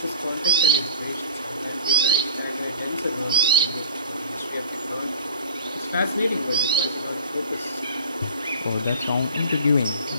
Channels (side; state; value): both; inverted; correlation -0.36